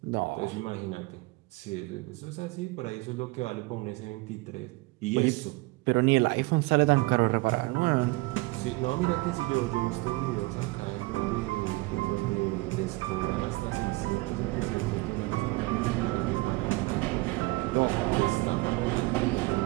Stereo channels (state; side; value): quieter; left; 22.9 dB